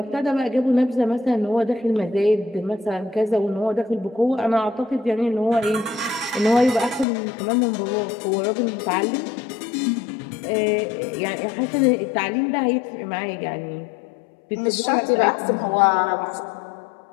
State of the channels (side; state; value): right; drops out; at 7.1 s